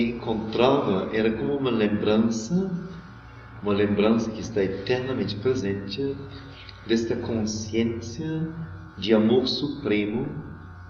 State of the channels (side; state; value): both; identical; correlation 1.00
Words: encontrava era como uma lembrança que está eternamente presente desta consciência de amor supremo